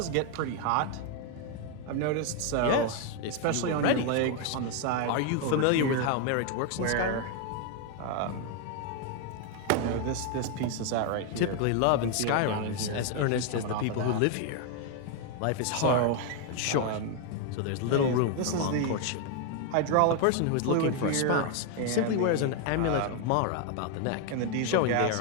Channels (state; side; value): different; both; correlation 0.01